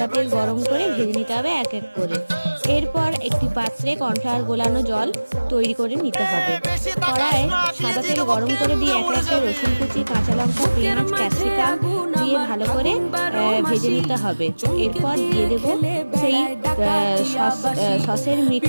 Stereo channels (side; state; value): both; inverted; correlation -1.00